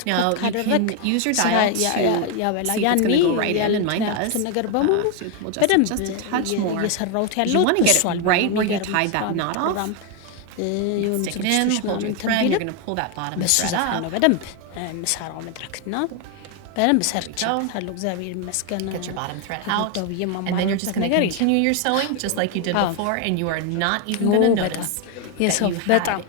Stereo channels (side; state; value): both; different; correlation 0.01